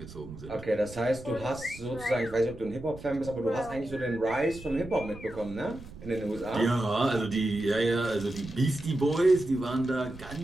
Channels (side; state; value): right; noise; rumble, 15 dB below the sound